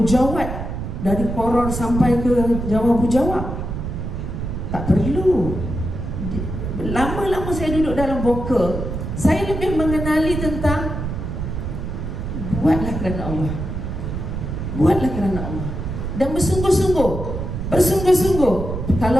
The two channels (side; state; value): right; noise; rumble, 5 dB below the sound